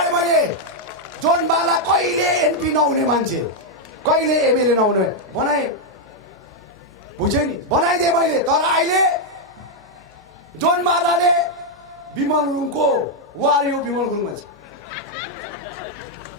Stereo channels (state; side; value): normal; both; correlation -0.01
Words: मैले। जोनबाला कहिले एमपी नहुने मान्छे, कहिले एमएलए नहुने बनाएँ, बुझेँ नि, बनाइदिएँ मैले। तर अहिले जोनबालाले विमल गुरुङको वार यो विमल गुरुङ मान्छे,